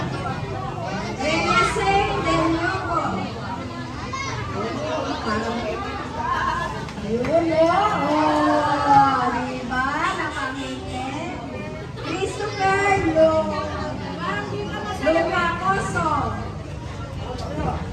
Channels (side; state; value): both; identical; correlation 1.00